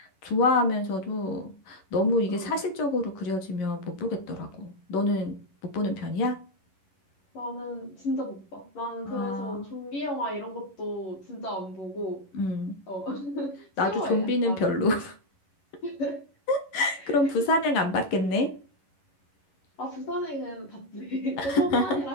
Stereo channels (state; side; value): late; right; 11 ms